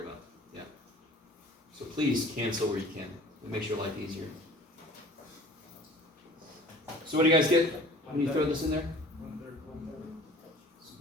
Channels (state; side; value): normal; both; correlation 0.46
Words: about. Yeah. So please cancel where you can. It makes your life easier. So what do you guys get when you throw this in there? 1/3.